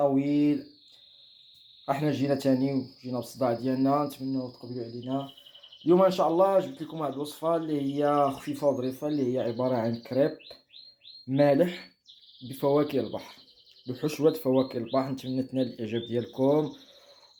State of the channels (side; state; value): both; identical; correlation 1.00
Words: احنا جينا تاني وجينا بالصداع ديالنا، نتمنى تقبلوا علينا. اليوم ان شاء الله جبت لكم واحد الوصفة اللي هي خفيفة وظريفة، اللي هي عبارة عن كريب مالح بفواكه البحر، بحشوة فواكه البحر. نتمنى تنال الإعجاب ديالكم.